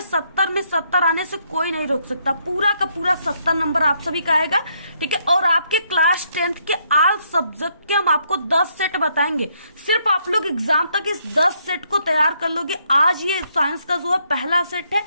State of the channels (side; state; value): both; inverted; correlation -0.73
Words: 70 में 70 आने से कोई नहीं रोक सकता। पूरा का पूरा 70 नंबर आप सभी का आएगा। ठीक है, और आपके क्लास 10 के ऑल सब्जेक्ट के हम आपको 10 सेट बताएंगे। सिर्फ आप लोग एग्जाम तक इस 10 सेट को तैयार कर लोगे। आज ये साइंस का जो है पहला सेट है।